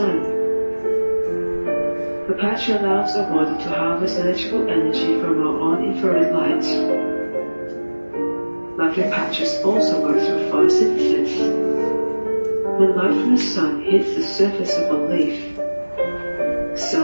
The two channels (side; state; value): both; inverted; correlation -1.00